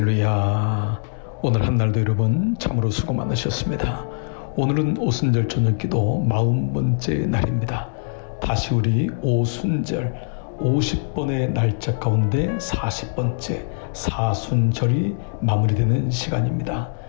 오늘 한날도 여러분 참으로 수고 많으셨습니다. 오늘은 오순절 저녁기도 40번째 날입니다. 다시 우리 오순절 50번의 날짜 가운데 40번째 사순절이 마무리되는 시간입니다.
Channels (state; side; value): silent; right; digital silence